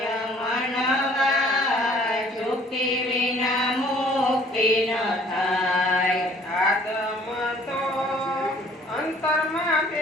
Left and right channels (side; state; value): both; normal; correlation 0.56